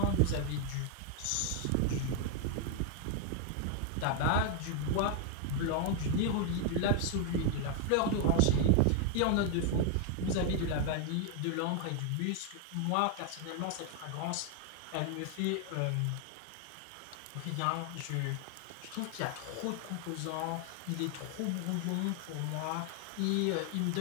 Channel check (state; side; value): different; both; correlation 0.00